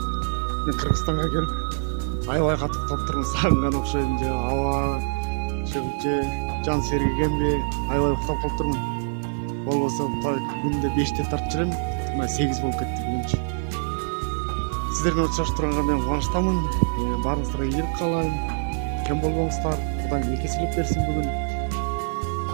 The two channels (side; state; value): left; silent; 62 dB below the other